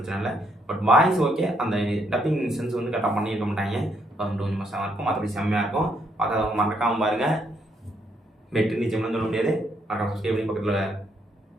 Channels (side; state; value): both; normal; correlation 0.73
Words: இல்லை. பட் வாய்ஸ் ஓகே, அந்த டப்பிங் சென்ஸ் வந்து கரெக்டாக பண்ணியிருக்க மாட்டாங்க. அது கொஞ்சம் மோசமாக இருக்கும், மற்றபடி செம்மையாக இருக்கும். பார்க்காதவங்க மறக்காமல் பாருங்கள். வெற்றி நிச்சயம்னு சொல்ல முடியாது. மறக்காம சப்ஸ்கிரைப் பண்ணி பக்கத்தில்